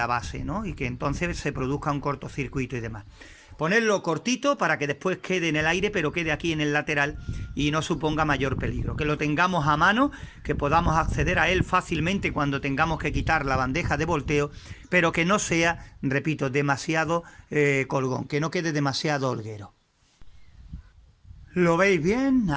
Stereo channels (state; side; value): identical; both; correlation 1.00